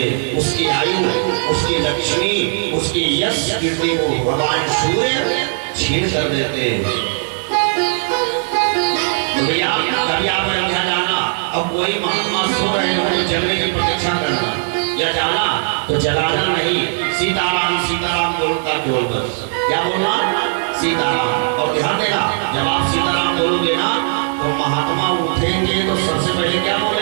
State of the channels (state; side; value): silent; left; 68 dB below the other